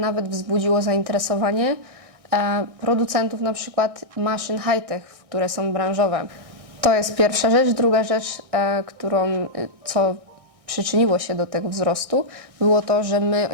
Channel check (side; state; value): left; late; 1.6 ms